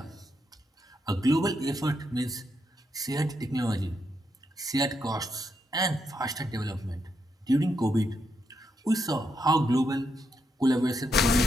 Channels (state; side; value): normal; both; correlation 0.81